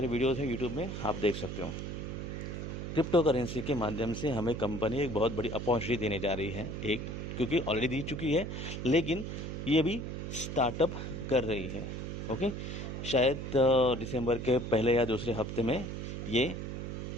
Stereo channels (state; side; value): noise; right; hum, 5 dB below the sound